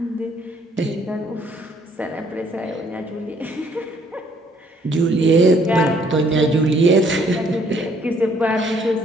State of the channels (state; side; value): normal; both; correlation 0.64